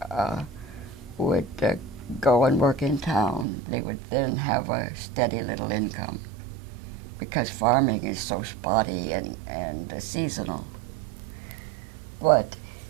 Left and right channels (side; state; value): left; drops out; at 3.5 s